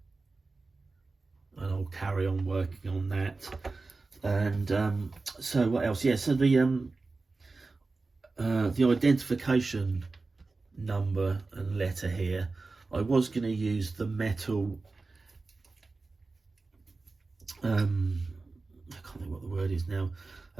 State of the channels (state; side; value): quieter; left; 3.7 dB